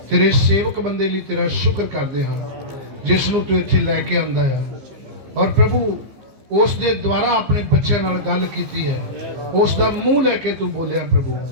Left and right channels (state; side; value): late; left; 15 ms